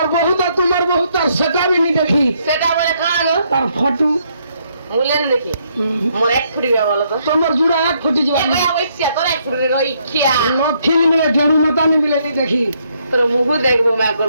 तार सेटा भी नहीं देखी সেটা বলে কাঁ গো तार फोटो মুলেন দেখি মোর এক ফুটি গয়া বলো তো तुम्हार जुड़ा एक फुटी जो গয়া ওইছিয়া তোর এক ফুটি গই খিয়া फिल्म में जड़ू मता नहीं मिले नहीं देखी তোর মুখ দেখবো মে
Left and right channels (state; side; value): inverted; both; correlation -0.72